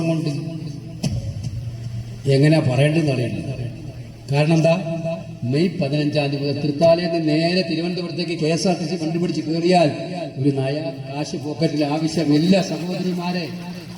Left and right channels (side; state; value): both; identical; correlation 1.00